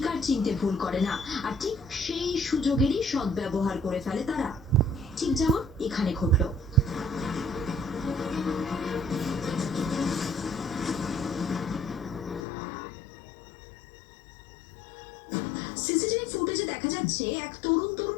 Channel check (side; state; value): right; drops out; at 12.5 s